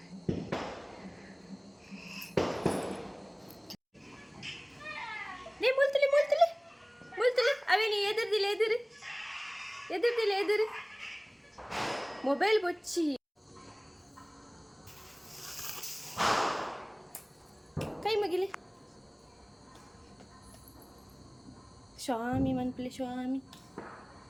Ni multili multili. Multili. Awe ni edirdilu ediru. Edirdilu ediru. Mobile bocci. Kai magili. Swami manpili Swami.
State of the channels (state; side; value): identical; both; correlation 1.00